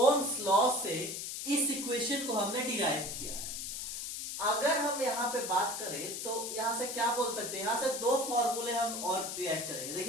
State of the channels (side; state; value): left; noise; hiss, 5 dB below the sound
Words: law से इस इक्वेशन को हमने डिराइव किया है. अगर हम यहां पे बात करें तो यहां से क्या बोल सकते हैं? यहां से दो फॉर्मूले हम और डिराइव करेंगे.